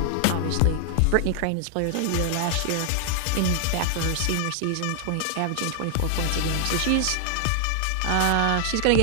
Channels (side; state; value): both; different; correlation 0.00